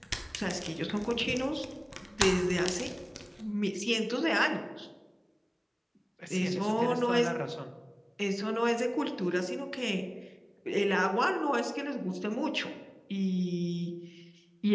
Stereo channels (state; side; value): identical; both; correlation 1.00